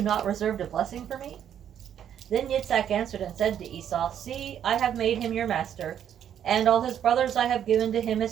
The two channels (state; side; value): quieter; left; 9.5 dB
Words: not reserved a blessing for me? Then Yitzhak answered and said to Esau, See, I have made him your master, and all his brothers I have given to him